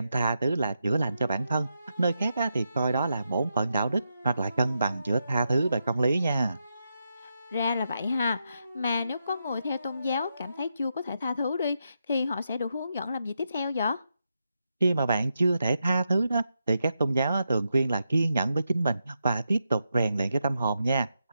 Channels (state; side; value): inverted; both; correlation -0.85